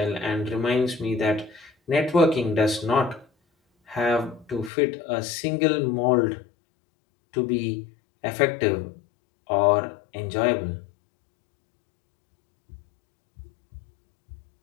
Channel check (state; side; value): drops out; right; at 4.7 s